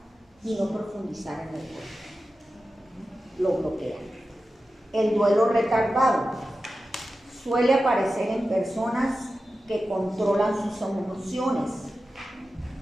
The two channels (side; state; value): both; normal; correlation 0.93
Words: y no profundizar en el duelo, lo bloquea. El duelo retardado suele aparecer en personas que controlan sus